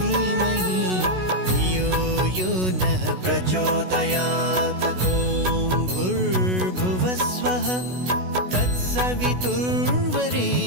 धियो यो नः प्रचोदयात्। ॐ भूर्भुवस्वः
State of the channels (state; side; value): late; left; 16 ms